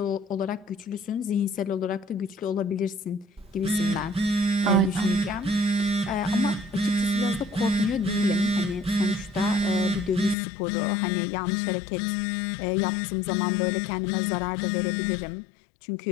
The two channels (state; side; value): drops out; right; at 10.4 s